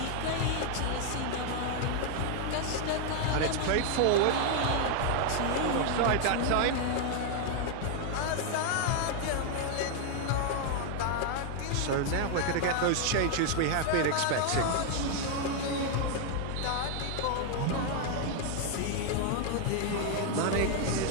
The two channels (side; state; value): both; different; correlation 0.00